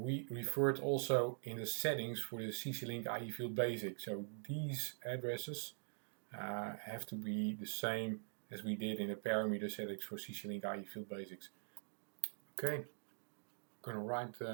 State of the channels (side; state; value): left; silent; digital silence